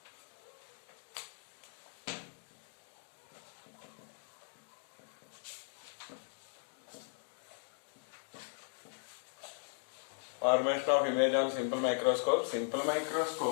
Formation of image on simple microscope. Simple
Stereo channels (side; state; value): right; silent; digital silence